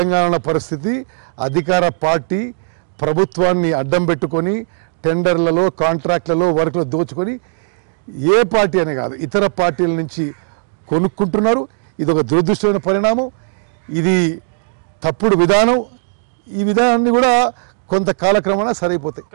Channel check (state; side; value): silent; left; digital silence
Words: పరిస్థితి అధికార పార్టీ ప్రభుత్వాన్ని అడ్డం పెట్టుకొని టెండర్లలో కాంట్రాక్ట్లలో వర్క్లో దోచుకొని ఏ పార్టీ అనే కాదు ఇతర పార్టీల నుంచి కొనుక్కుంటున్నారు. ఇది ఒక దురదృష్టమైన పరిణామం, ఇది తప్పుడు విధానం. ఈ విధానాన్ని కూడా కొంత కాలక్రమేణా సరైపోతాయి.